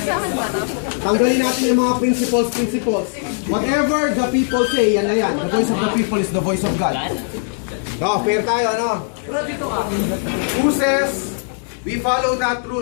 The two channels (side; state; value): right; silent; 61 dB below the other